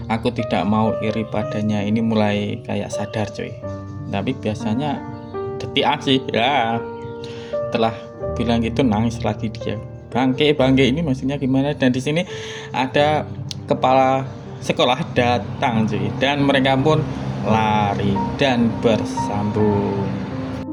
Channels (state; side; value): identical; both; correlation 1.00